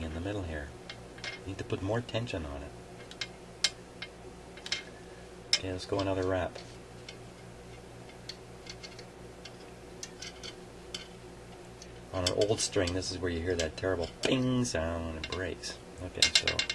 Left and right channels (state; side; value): identical; both; correlation 1.00